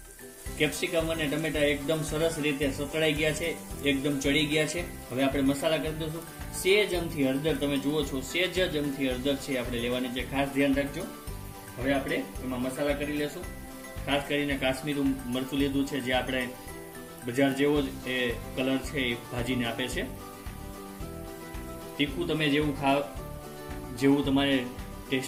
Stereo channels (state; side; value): identical; both; correlation 1.00